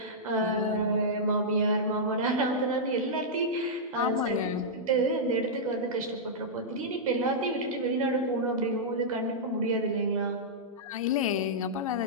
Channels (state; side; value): normal; both; correlation -0.11